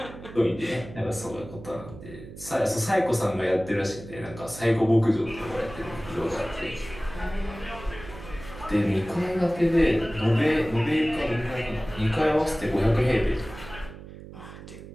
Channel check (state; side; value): noise; right; hum, 15 dB below the sound